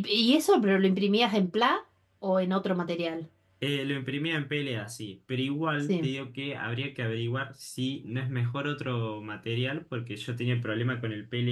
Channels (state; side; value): identical; both; correlation 1.00